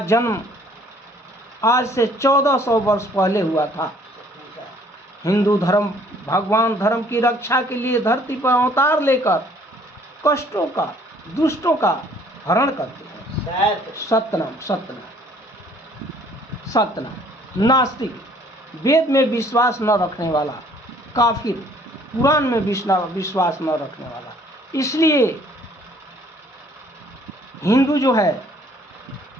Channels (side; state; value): both; normal; correlation 0.59